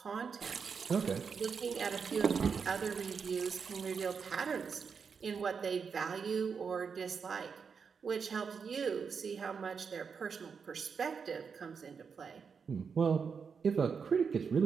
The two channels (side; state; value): left; quieter; 6.0 dB